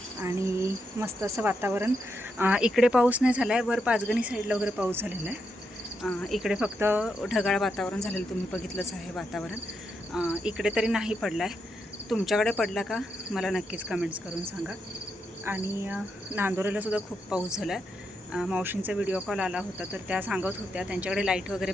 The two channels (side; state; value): both; normal; correlation 0.82